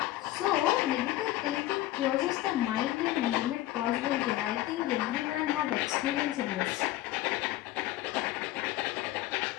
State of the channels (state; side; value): quieter; right; 15.9 dB